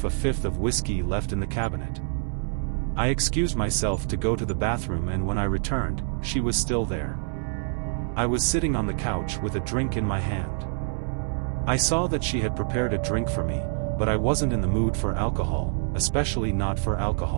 a fifth of whiskey left in the cabinet. I excused myself to go to the bathroom and when I returned, she was still there. I was sitting on the couch with a drink in my hand. I saw that she had prepared a drink for me, but I wasn't in the mood for alcohol, especially not for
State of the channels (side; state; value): left; silent; 61 dB below the other